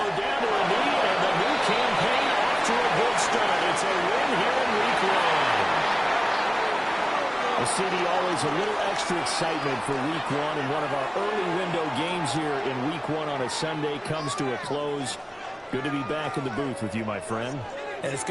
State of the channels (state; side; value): identical; both; correlation 1.00